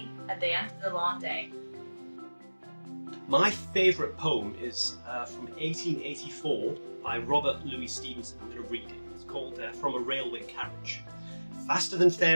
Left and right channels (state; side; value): inverted; both; correlation -1.00